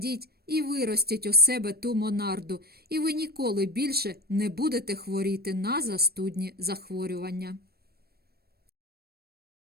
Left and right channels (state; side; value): late; left; 0.46 ms